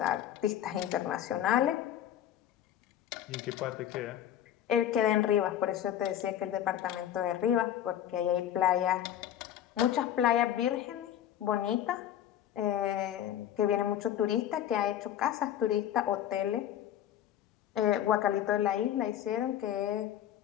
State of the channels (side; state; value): right; quieter; 10.9 dB